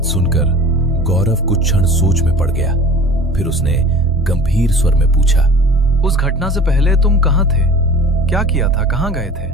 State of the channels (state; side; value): normal; both; correlation 0.42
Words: सुनकर गौरव कुछ क्षण सोच में पड़ गया। फिर उसने गंभीर स्वर में पूछा, उस घटना से पहले तुम कहाँ थे? क्या किया था? कहाँ गए थे?